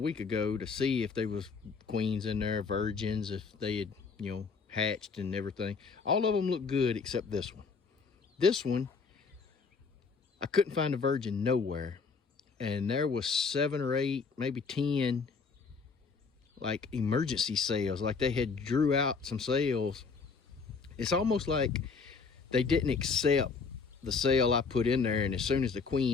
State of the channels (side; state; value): right; quieter; 5.0 dB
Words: ago to see if there was queens in there, virgins, if they had, hatched and everything, all of them looked good except this one. This one, I couldn't find a virgin nowhere. And there was 7 or 8, maybe 10, like emergency cells, like they had drew out some cells. It's almost like they didn't accept the cell I put in there, and as soon as the